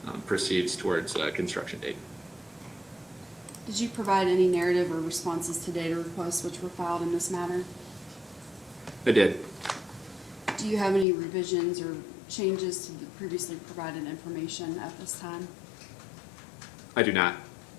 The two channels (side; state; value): right; drops out; at 11.1 s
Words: proceeds towards construction date. Did you provide any narrative or responses to data requests which were filed in this matter? I did. Do you have any revisions or changes to the previously provided information at this time? I do not.